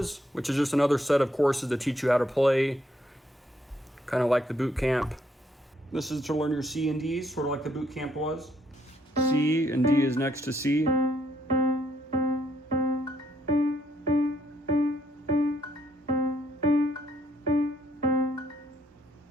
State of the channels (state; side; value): normal; both; correlation 0.71